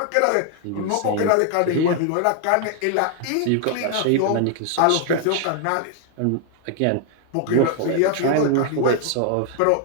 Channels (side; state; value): both; different; correlation 0.00